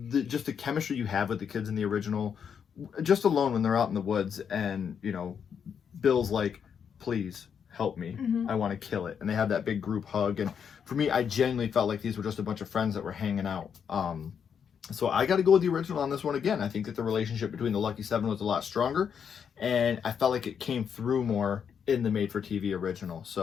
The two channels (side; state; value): right; quieter; 7.4 dB